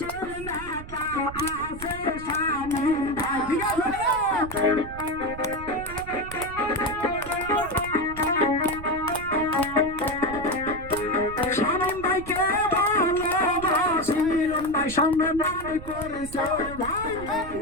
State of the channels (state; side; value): noise; right; rumble, 13 dB below the sound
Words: নেতা আছে শামীম ভাই ঠিক আছে শামীম ভাইকে ভালোবাসি ভাই সম্মান করেছে ভাই